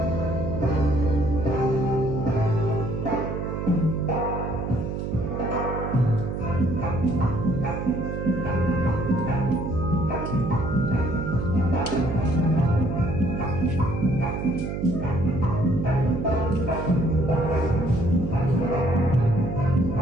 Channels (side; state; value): right; noise; hum, 3 dB below the sound